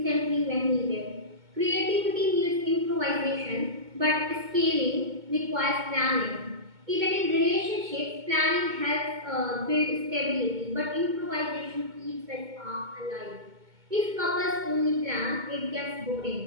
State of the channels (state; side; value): late; left; 2.2 ms